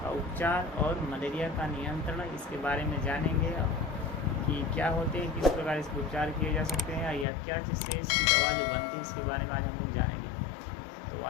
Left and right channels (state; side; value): drops out; right; at 7.2 s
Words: का उपचार और मलेरिया का नियंत्रण। इसके बारे में जानेंगे कि क्या होते हैं, किस प्रकार इसके उपचार किए जा सकते हैं या क्या चीज़ से इसकी दवा जो बनती है, इसके बारे में आज हम लोग जानेंगे। तो